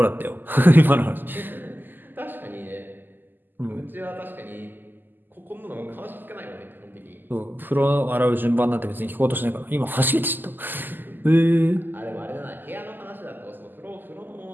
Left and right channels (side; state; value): left; late; 0.090 ms